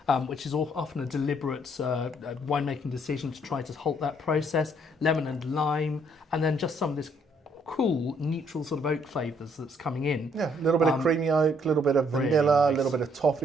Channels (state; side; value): normal; both; correlation 0.67